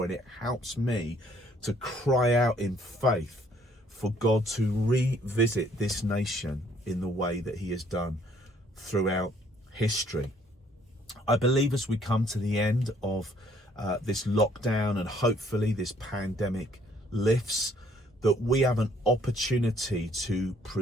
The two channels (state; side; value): normal; both; correlation 0.63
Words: and it helps me to cry out in faith for God to revisit this nation in the way that he has done throughout history. I believe as we come to the end of this lockdown, and hopefully this pandemic lifts, that we have an opportunity to